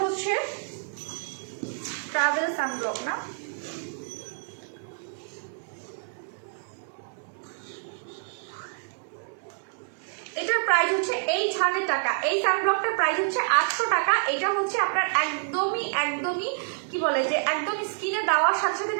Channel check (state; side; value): silent; left; 60 dB below the other